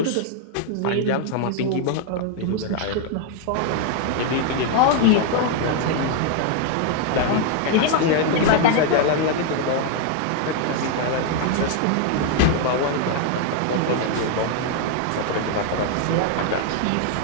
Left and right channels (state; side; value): different; both; correlation 0.00